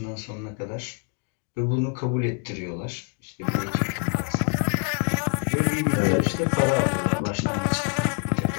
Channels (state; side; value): quieter; right; 37.7 dB